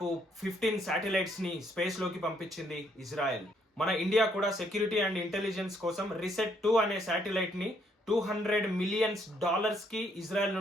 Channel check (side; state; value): both; normal; correlation 0.70